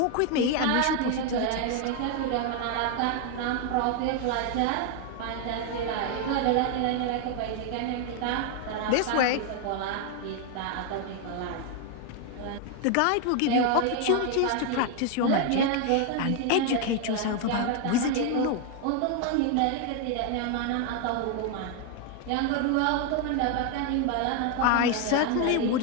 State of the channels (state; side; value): different; both; correlation 0.01